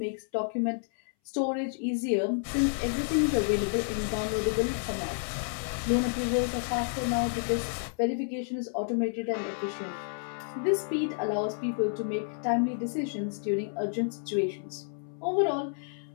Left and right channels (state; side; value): silent; right; 58 dB below the other